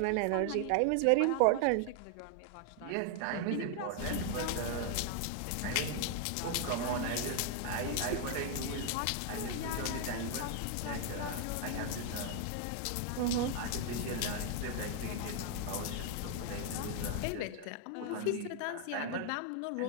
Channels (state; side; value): different; both; correlation 0.00